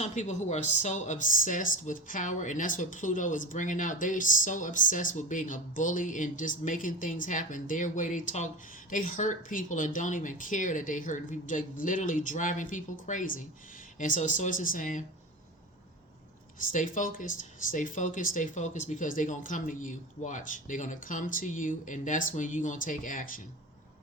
people who are so obsessed with power, and that's what Pluto is bringing out. They're so obsessed with being a bully and just making things happen their way. They talk, they hurt people and don't even care that they hurt people. They're literally driving people crazy. And so Source is saying, stay focused, stay focused, stay focused, because they're going to come to you. Watch. They're going to come to you, and that's when you're going to take action.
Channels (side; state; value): both; normal; correlation 0.27